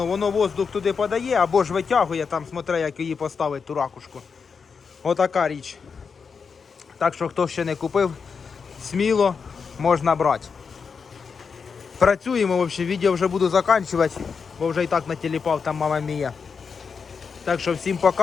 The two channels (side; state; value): right; quieter; 5.7 dB